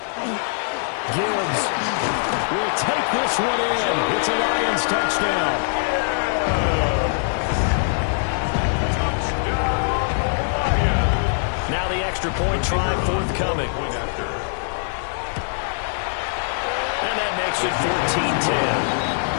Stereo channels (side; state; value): right; silent; digital silence